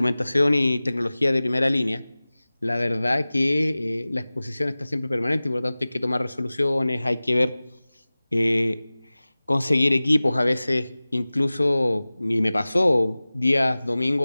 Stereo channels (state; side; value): inverted; both; correlation -0.98